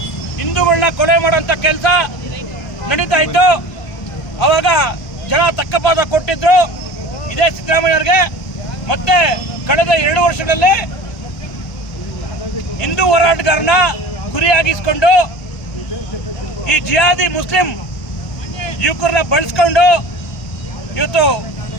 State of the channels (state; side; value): late; right; 1.2 ms